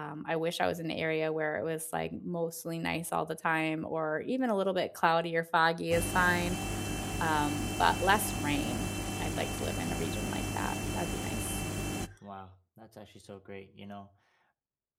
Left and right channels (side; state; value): both; identical; correlation 1.00